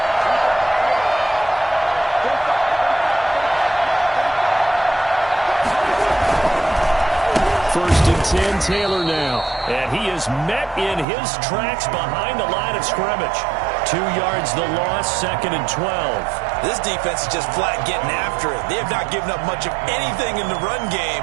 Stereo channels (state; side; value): drops out; left; at 11.1 s